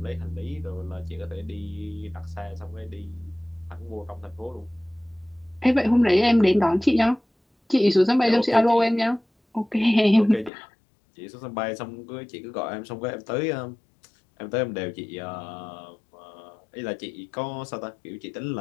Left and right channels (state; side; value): drops out; right; at 10.5 s